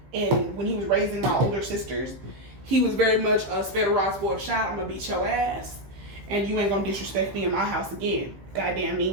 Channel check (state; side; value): late; left; 15 ms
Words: and when he was raising my older sisters, he was very much a spare rod, spoiled child. I'm gonna beat your ass, and you ain't gonna disrespect me in my house again. Goddamn